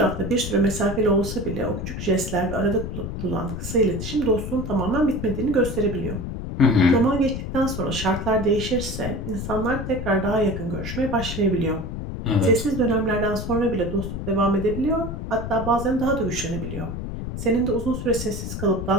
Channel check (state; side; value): noise; left; rumble, 6 dB below the sound